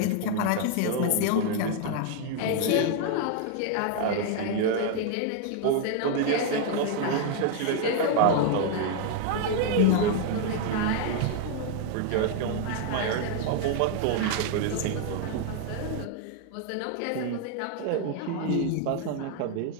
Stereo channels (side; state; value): both; different; correlation 0.00